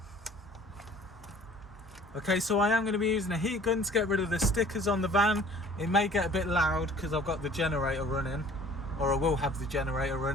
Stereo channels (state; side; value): normal; both; correlation 0.51